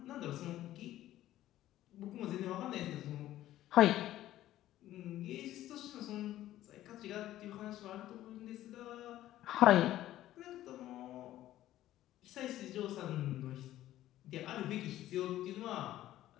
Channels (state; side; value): quieter; right; 13.9 dB